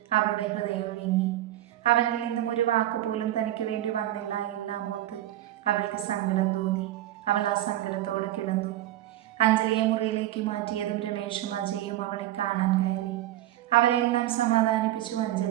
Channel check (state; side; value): quieter; left; 14.2 dB